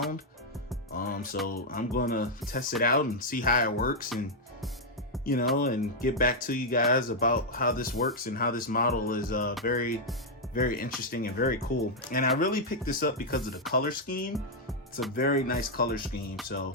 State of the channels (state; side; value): normal; both; correlation -0.02